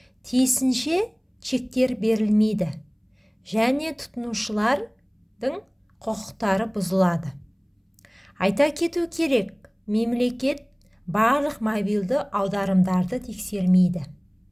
Тиісінше чектер берілмейді және тұтынушылардың құқықтары бұзылады. Айта кету керек, мемлекет барлық мобилді аударымдарды тексермейді.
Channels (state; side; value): identical; both; correlation 1.00